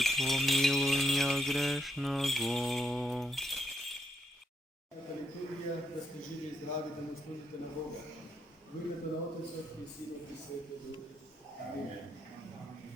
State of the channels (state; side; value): normal; both; correlation 0.77